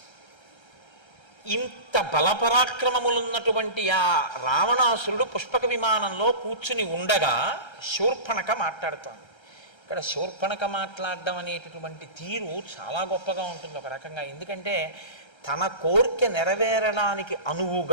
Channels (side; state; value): right; late; 1.3 ms